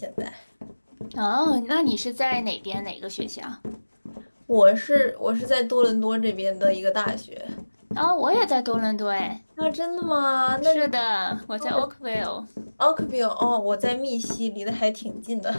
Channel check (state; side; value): inverted; both; correlation -1.00